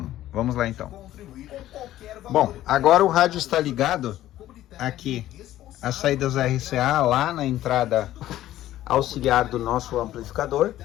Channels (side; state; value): right; quieter; 13.8 dB